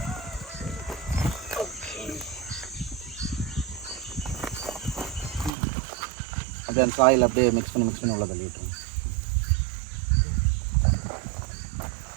அப்படியே அந்த சாயில் அப்படியே மிக்ஸ் பண்ணி உள்ள தள்ளி விட்டுருங்க.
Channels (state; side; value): drops out; left; at 5.5 s